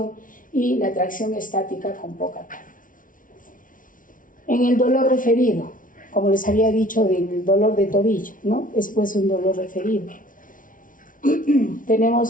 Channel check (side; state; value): right; late; 0.38 ms